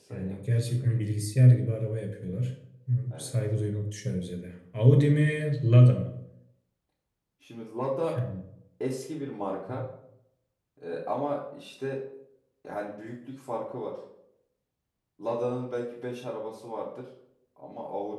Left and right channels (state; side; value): identical; both; correlation 1.00